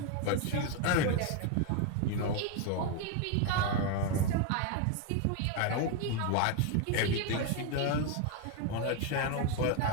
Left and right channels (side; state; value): both; different; correlation 0.02